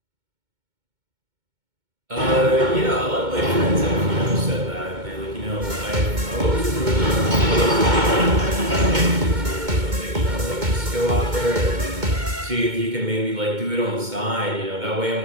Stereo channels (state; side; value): late; left; 2.2 ms